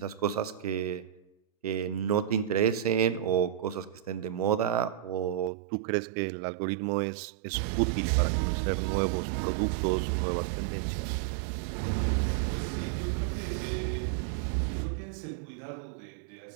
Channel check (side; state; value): left; drops out; at 5.5 s